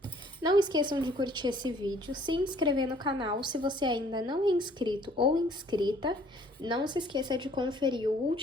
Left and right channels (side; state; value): both; normal; correlation 0.58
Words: Não esqueçam de curtir esse vídeo, se inscrever no canal se você ainda não é inscrito ou inscrita. Não se esqueça de conferir o